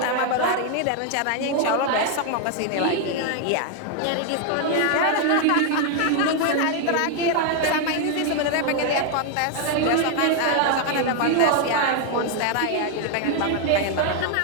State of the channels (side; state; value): both; different; correlation 0.00